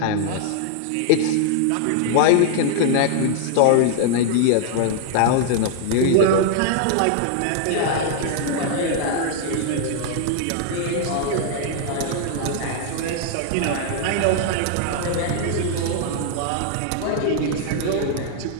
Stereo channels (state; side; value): different; both; correlation 0.00